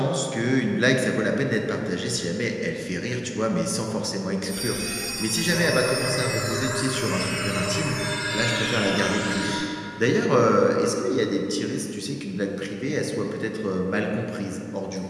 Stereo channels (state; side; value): identical; both; correlation 1.00